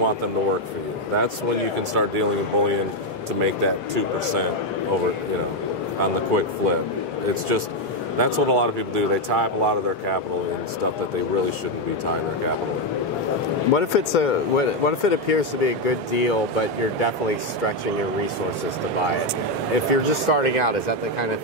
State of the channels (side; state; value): both; normal; correlation 0.05